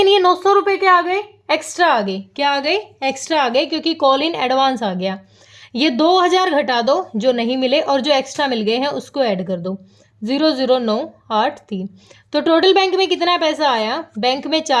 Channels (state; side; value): identical; both; correlation 1.00